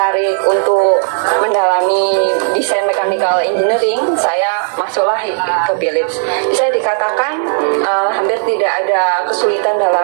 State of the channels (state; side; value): silent; left; digital silence